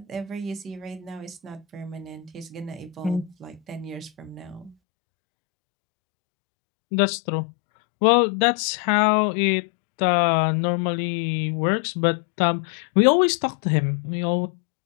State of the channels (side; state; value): right; drops out; at 4.8 s